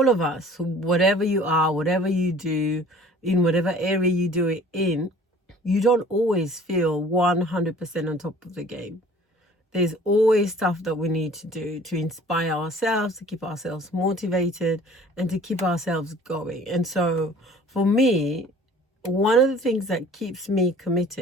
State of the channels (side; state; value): both; normal; correlation 0.50